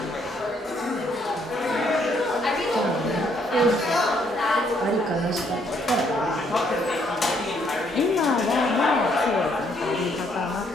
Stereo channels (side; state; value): both; normal; correlation 0.69